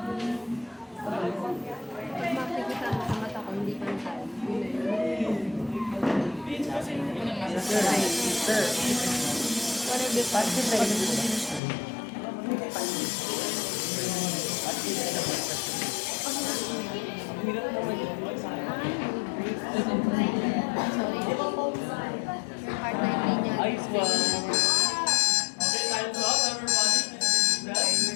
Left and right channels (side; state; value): right; drops out; at 11.6 s